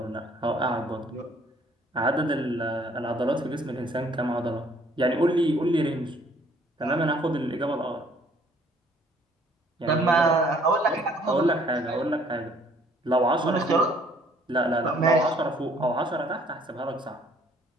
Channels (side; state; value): both; normal; correlation 0.60